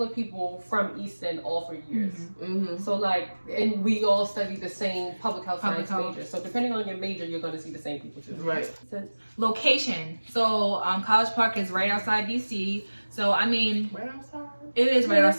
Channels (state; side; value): inverted; both; correlation -1.00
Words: of people from Easton all 4 years. So like, and we all studied the same public health science major. So depending on your major, you're going to see the same people too. Right. Location. So College Park is right outside DC. So I mean, Right outside. It is right